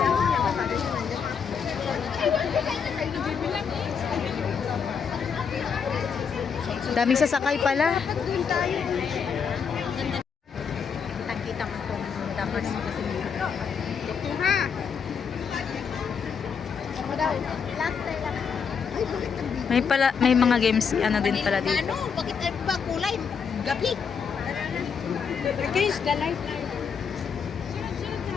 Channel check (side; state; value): right; quieter; 6.5 dB